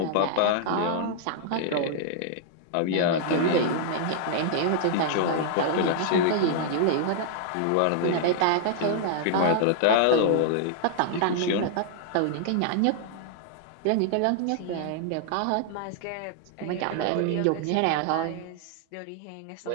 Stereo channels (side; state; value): both; different; correlation -0.01